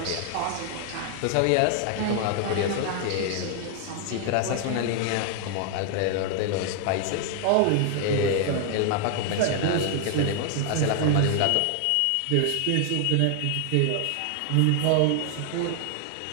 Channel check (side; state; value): both; different; correlation 0.00